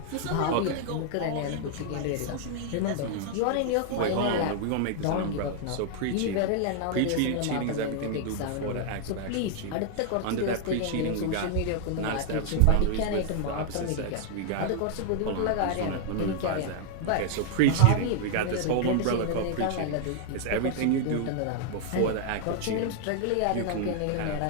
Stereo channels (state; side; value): different; both; correlation 0.00